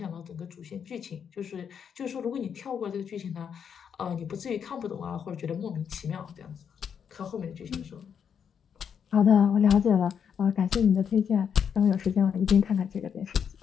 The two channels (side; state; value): right; quieter; 7.5 dB